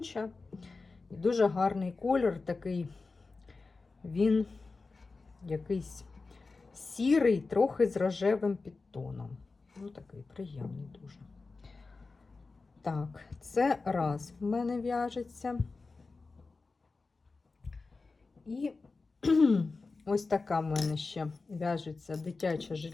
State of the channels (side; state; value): right; quieter; 3.9 dB